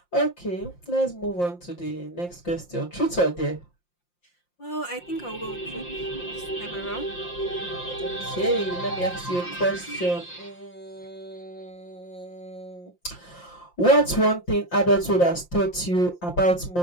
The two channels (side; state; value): right; late; 5.7 ms